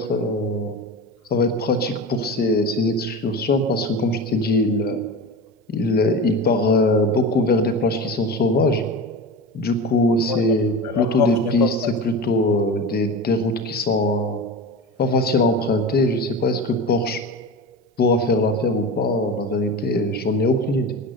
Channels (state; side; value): normal; both; correlation 0.28